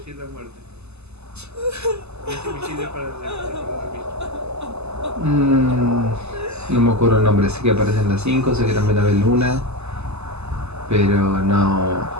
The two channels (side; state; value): left; late; 0.80 ms